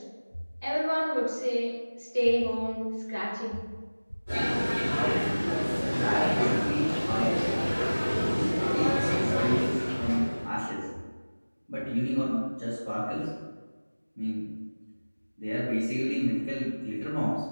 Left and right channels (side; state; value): both; inverted; correlation -1.00